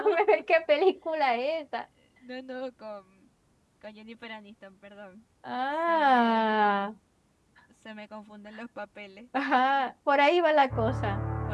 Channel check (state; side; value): identical; both; correlation 1.00